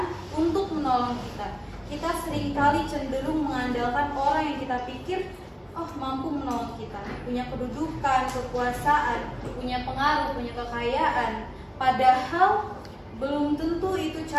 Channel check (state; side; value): identical; both; correlation 1.00